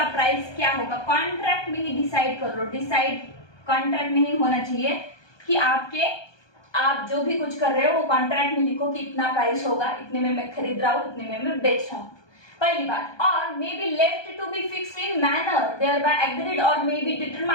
प्राइस क्या होगा, कॉन्ट्रैक्ट में ही डिसाइड कर लो। डिसाइड कॉन्ट्रैक्ट में ही होना चाहिए कि आप जो भी कुछ कर रहे हो वो कॉन्ट्रैक्ट में लिखो कि इतना प्राइस होगा, इतने में मैं खरीद रहा हूँ, इतने में मैं बेच रहा हूँ। पहली बात, or may be left to be fixed in manner thereby agreed or may be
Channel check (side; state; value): right; late; 1.2 ms